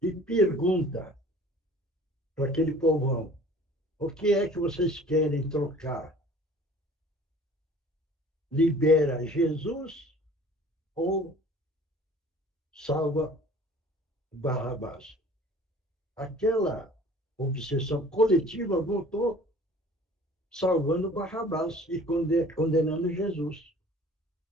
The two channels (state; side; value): normal; both; correlation 0.48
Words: E pergunta para aquele povão: o que é que vocês querem trocar? Libera Jesus ou salva Barrabás? Aquela obsessão coletiva voltou salvando Barrabás e condenando Jesus.